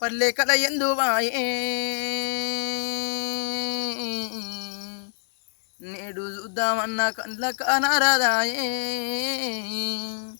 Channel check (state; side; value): silent; right; 61 dB below the other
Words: కల ఎందువాయే నేడు చూద్దామన్న కండ్ల కానరాదాయే